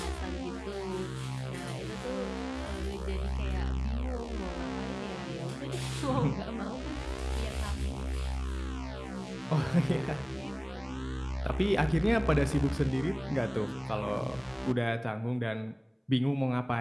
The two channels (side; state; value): both; identical; correlation 1.00